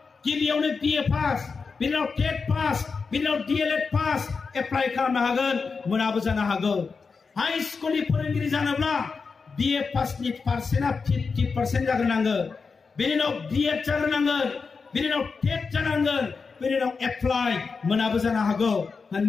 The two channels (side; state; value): right; quieter; 4.9 dB